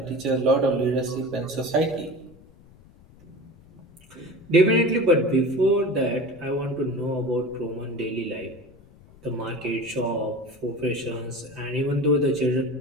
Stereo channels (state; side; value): noise; left; rumble, 25 dB below the sound